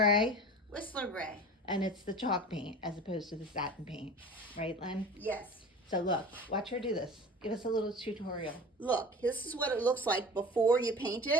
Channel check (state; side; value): normal; both; correlation 0.37